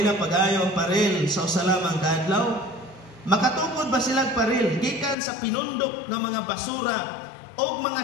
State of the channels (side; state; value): right; drops out; at 5.2 s